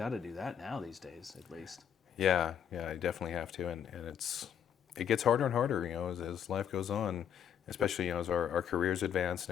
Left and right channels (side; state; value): right; quieter; 8.7 dB